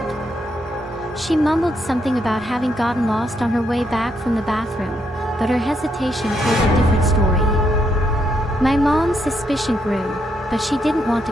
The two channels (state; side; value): normal; both; correlation 0.77